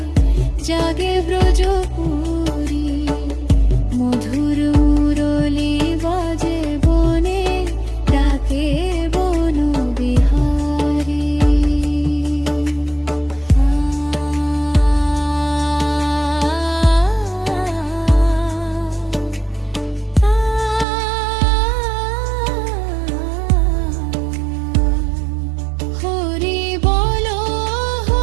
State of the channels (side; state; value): left; drops out; at 20.9 s